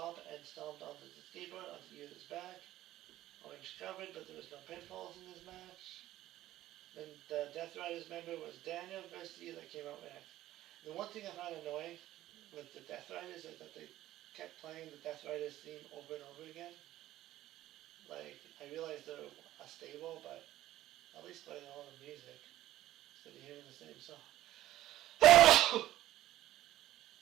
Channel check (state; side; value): quieter; left; 14.4 dB